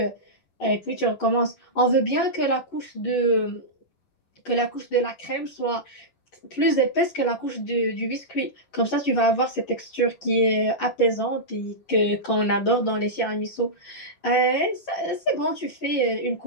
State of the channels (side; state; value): right; late; 11 ms